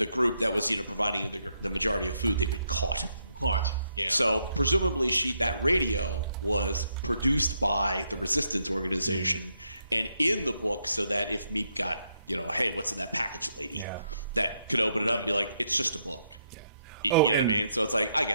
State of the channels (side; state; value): both; inverted; correlation -0.77